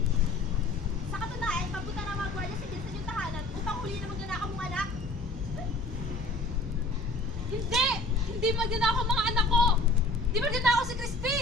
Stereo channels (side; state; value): right; quieter; 3.0 dB